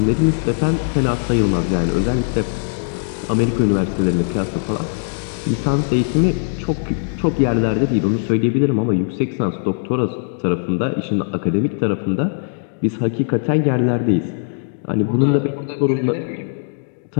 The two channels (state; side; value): silent; right; digital silence